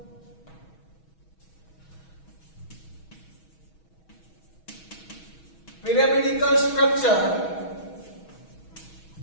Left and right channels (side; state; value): right; late; 6.2 ms